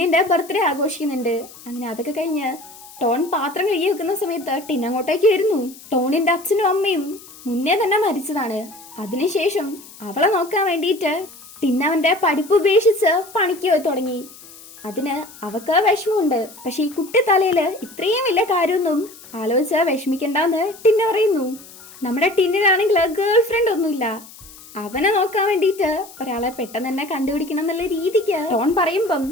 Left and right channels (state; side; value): noise; left; hiss, 19 dB below the sound